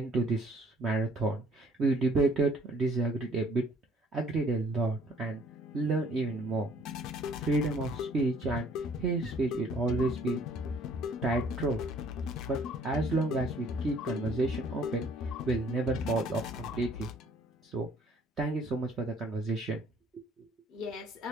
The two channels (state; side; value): normal; both; correlation 0.58